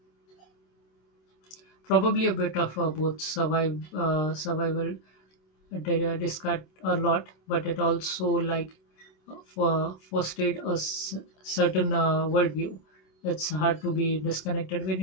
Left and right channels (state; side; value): late; right; 27 ms